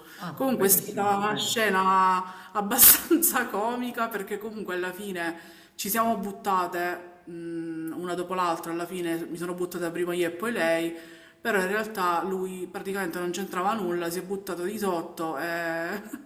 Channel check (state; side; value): identical; both; correlation 1.00